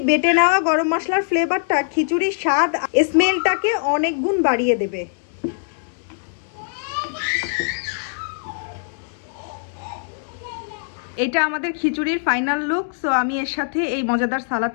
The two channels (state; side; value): silent; right; digital silence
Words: বেটে নেওয়া গরম মশলার ফ্লেভারটা খিচুড়ির স্বাদ স্মেলটাকে অনেক গুণ বাড়িয়ে দেবে। এটা আমাদের খিচুড়ির ফাইনাল লুক। সো আমি এর সাথে এই মজাদার